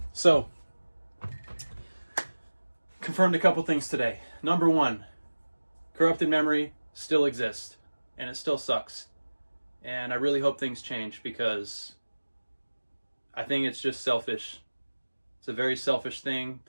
So, confirmed a couple things today. Number one, corrupted memory still exists, and it still sucks. And I really hope things change, because I think it's just selfish. It's a very selfish thing.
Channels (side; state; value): both; inverted; correlation -1.00